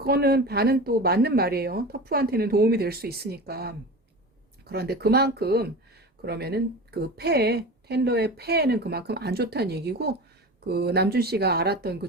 반은 또 맞는 말이에요. 터프한테는 도움이 될 수 있으니까. 그런데 그만큼 그러면은 그 폐에 텐더의 폐에는 그만큼 안 좋다는 얘기고 그 남준 씨가 알았던 그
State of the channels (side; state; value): both; normal; correlation 0.31